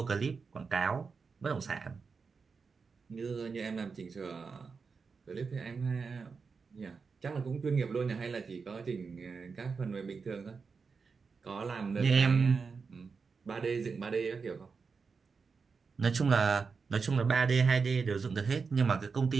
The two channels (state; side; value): quieter; left; 5.1 dB